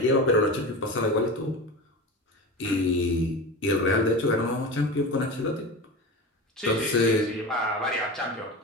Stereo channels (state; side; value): normal; both; correlation 0.27